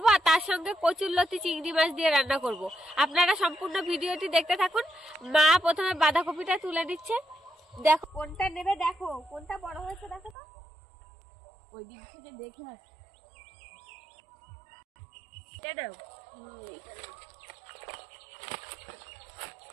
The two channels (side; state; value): left; drops out; at 10.4 s